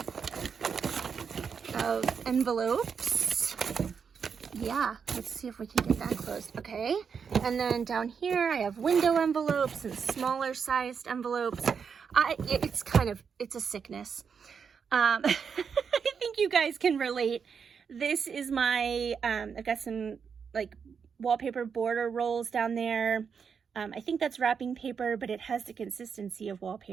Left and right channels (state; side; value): quieter; left; 6.4 dB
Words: of envelopes. Yeah, let's see if we can get that closed. Okay, and then down here I have window envelopes and smaller sized envelopes. It's a sickness. I think you guys can relate. This is my, I've got some like wallpaper border rolls down there. I think that's wrapping paper, but it has the consistency of